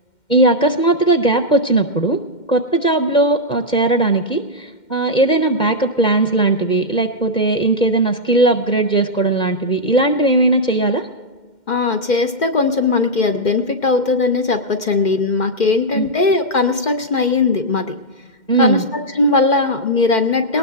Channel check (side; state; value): right; late; 2.1 ms